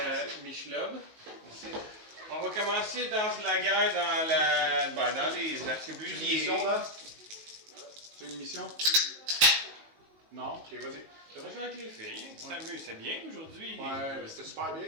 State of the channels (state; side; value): late; left; 19 ms